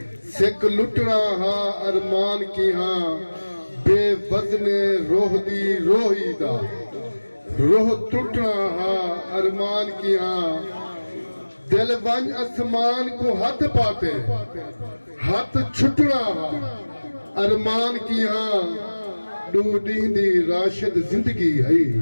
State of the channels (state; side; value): inverted; both; correlation -1.00